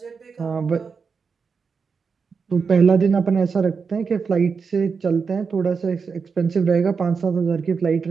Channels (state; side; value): quieter; left; 5.4 dB